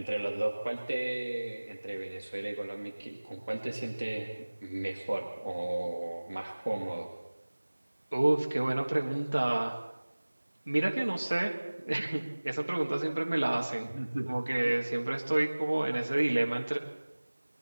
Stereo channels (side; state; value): both; inverted; correlation -1.00